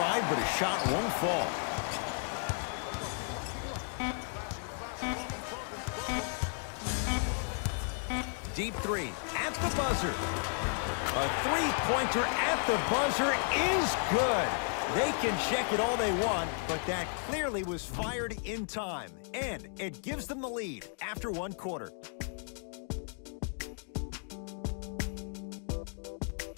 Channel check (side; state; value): right; silent; 55 dB below the other